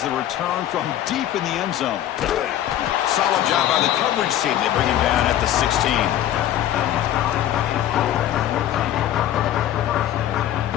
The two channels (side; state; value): right; quieter; 12.0 dB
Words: the return from deep in the end zone. Solid job by the coverage team. They bring him down at the 16.